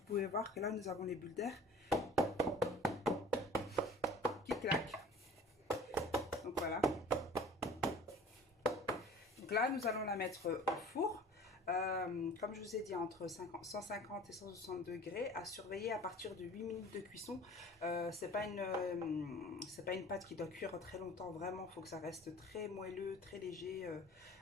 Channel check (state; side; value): normal; both; correlation 0.45